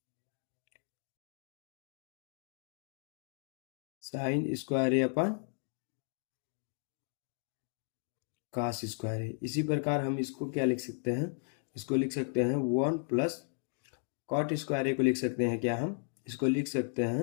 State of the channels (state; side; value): silent; right; 54 dB below the other